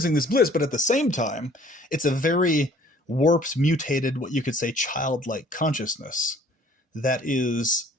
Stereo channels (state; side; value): normal; both; correlation 0.56